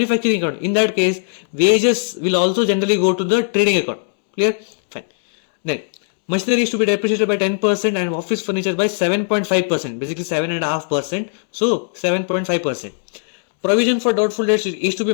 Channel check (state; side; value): silent; right; digital silence